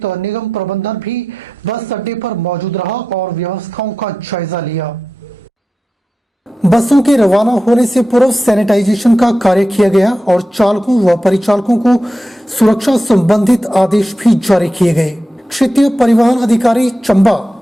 निगम प्रबंधन भी बस अड्डे पर मौजूद रहा और व्यवस्थाओं का जायजा लिया। बसों के रवाना होने से पूर्व सैनिटाइजेशन का कार्य किया गया और चालकों व परिचालकों को सुरक्षा संबंधित आदेश भी जारी किए गए। क्षेत्रीय परिवहन अधिकारी चंबा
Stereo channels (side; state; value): both; normal; correlation 0.90